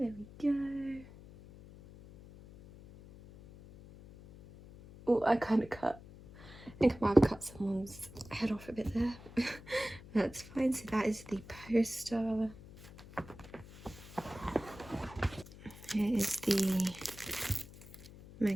we go. Oh, I kind of cut. I think I might have cut someone's head off a bit there. That's fine. So that is the poster. Here is the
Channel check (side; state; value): left; noise; hum, 18 dB below the sound